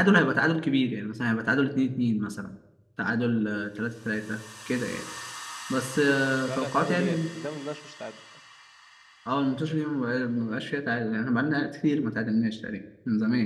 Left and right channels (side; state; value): both; identical; correlation 1.00